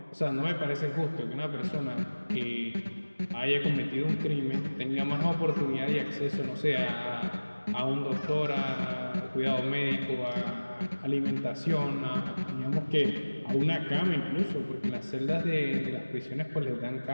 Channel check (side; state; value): both; inverted; correlation -1.00